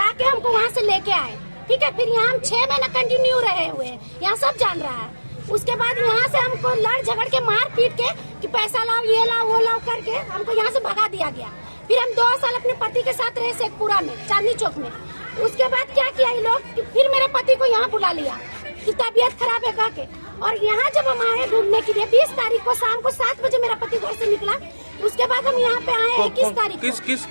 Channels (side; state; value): both; inverted; correlation -1.00